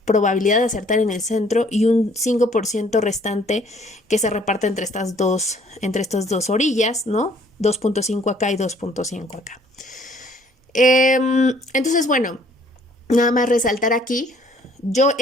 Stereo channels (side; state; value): both; normal; correlation 0.60